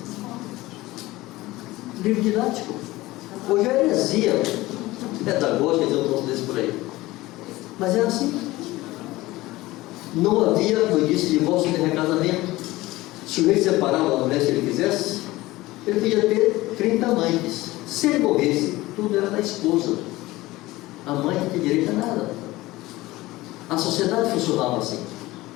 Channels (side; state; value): right; quieter; 18.7 dB